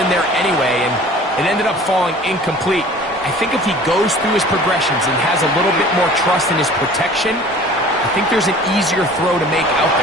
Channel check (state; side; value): normal; both; correlation 0.46